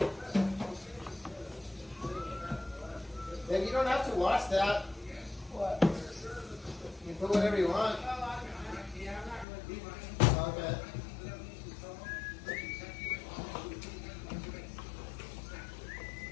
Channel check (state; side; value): drops out; right; at 9.5 s